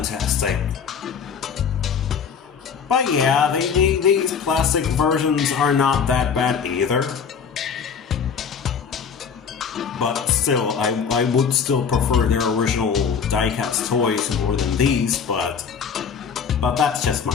But yeah, these plastic versions are not that bad either. But still, I would still prefer their original diecast toys more than these, but that's just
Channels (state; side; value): quieter; right; 6.6 dB